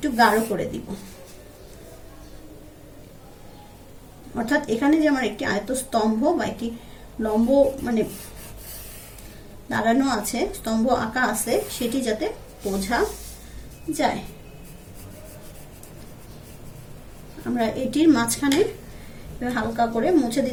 গাঢ় করে দিব। অর্থাৎ এখানে যে আমার একটি আয়ত স্তম্ভ বা একটি লম্ব মানে দাঁড়ানো আছে, স্তম্ভ আঁকা আছে, সেটি যাতে বোঝা যায়। আমরা এটির মাঝখানে হালকা করে মুছে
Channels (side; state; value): both; identical; correlation 1.00